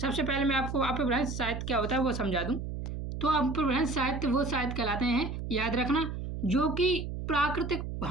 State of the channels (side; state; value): right; noise; hum, 6 dB below the sound